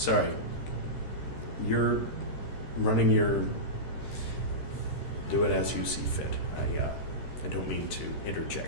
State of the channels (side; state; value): right; late; 13 ms